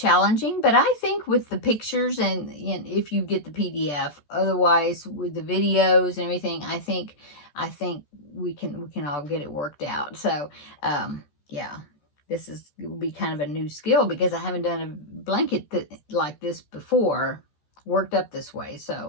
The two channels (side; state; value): right; late; 14 ms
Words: but I think with the pictures and if you get the PDF, otherwise with the videos and everything, I think we can all get it worked out. So yeah, this will be kind of a new skill, because I haven't done a blanket like this before, worked up this way.